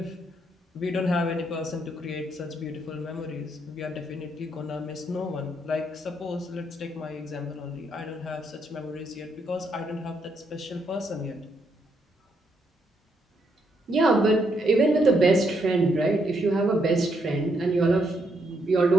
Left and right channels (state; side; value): normal; both; correlation 0.76